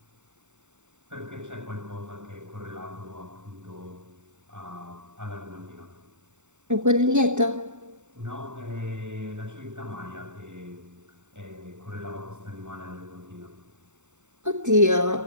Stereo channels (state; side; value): late; left; 0.84 ms